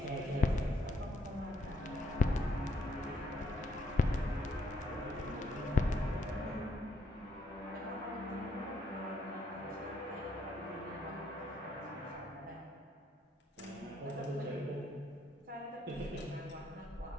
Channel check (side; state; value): both; normal; correlation 0.72